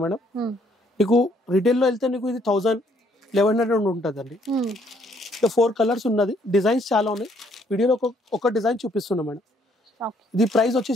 మేడం. నీకు రిటైల్ లో వెళ్తే నీకు ఇది 1100 ఉంటుంది అండి. 4 కలర్స్ ఉన్నది. డిజైన్స్ చాలా ఉన్నాయి. వీడియోలో ఒక డిజైన్ చూపిస్తున్నా మేడం. ఇది ప్రైస్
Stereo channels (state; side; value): normal; both; correlation 0.67